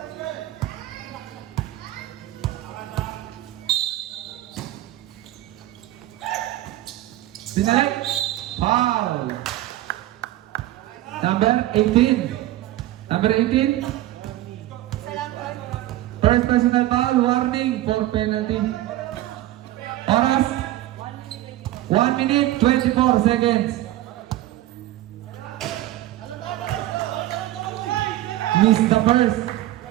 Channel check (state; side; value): quieter; left; 15.0 dB